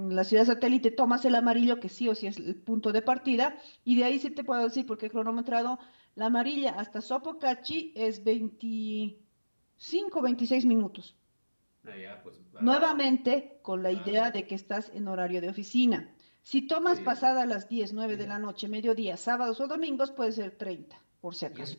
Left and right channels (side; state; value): both; inverted; correlation -1.00